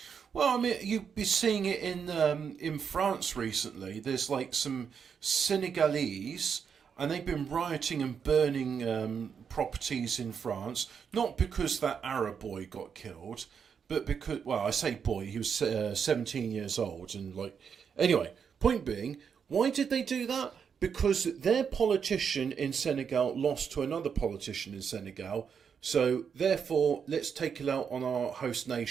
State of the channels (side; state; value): left; quieter; 6.9 dB